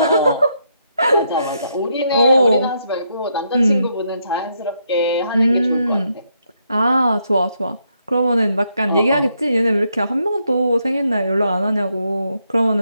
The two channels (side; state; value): both; inverted; correlation -0.77